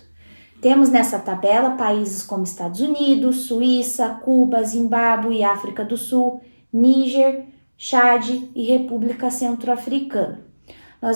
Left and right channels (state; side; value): inverted; both; correlation -1.00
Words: Temos nessa tabela países como Estados Unidos, Suíça, Cuba, Zimbábue, África do Sul, Níger, Chad e República Centro-Africana.